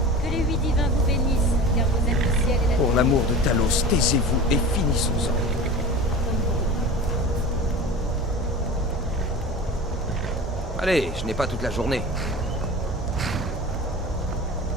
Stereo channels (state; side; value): normal; both; correlation 0.34